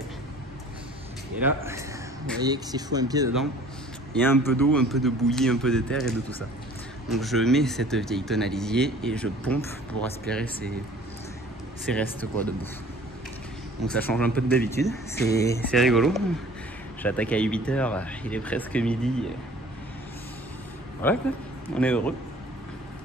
Et là, vous voyez que si je fous un pied dedans, il y a un peu d'eau, un peu de bouillie, un peu de terre et de tout ça. Donc je mets cette vieille tonne à lisier et je pompe pour aspirer ces restes quoi, de bouffe. Donc ça change un peu de d'habitude, c'est rigolo. J'attaque à 8 h, il est presque midi. Voilà quoi, on est heureux.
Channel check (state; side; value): normal; both; correlation 0.50